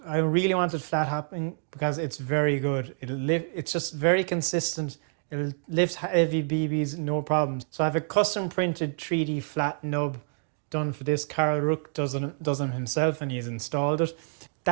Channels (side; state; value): left; silent; digital silence